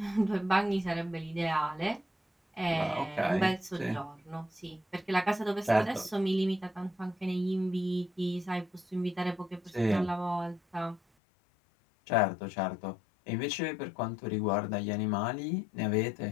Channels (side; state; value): right; drops out; at 11.0 s